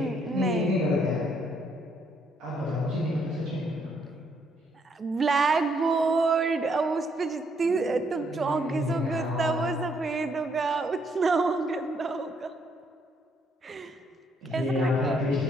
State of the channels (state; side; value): normal; both; correlation 0.71